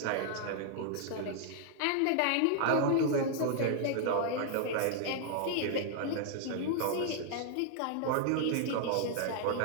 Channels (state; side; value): different; both; correlation 0.00